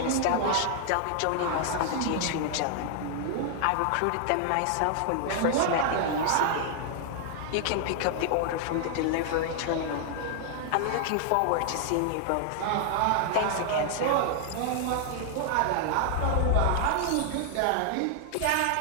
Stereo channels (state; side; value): different; both; correlation 0.00